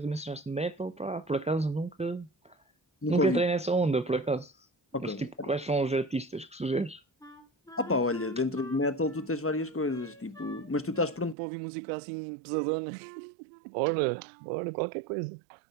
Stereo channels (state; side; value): drops out; left; at 11.4 s